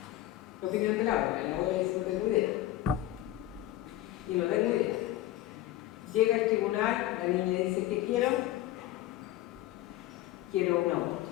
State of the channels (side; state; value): right; quieter; 14.8 dB